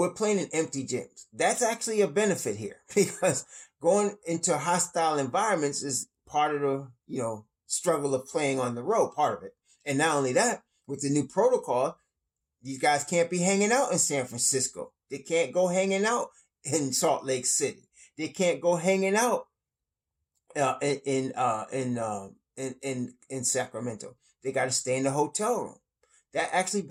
playing in empty gyms. That's actually a benefit here because going into hostile environments is part of the, struggle of playing on the road, part of it. And not only that, with the new protocol, these guys can't be hanging out in San Francisco. They can't go hanging out in Salt Lake City. They can't go hanging out in Sacramento. They got to stay in the hotel room. That actually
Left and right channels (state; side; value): identical; both; correlation 1.00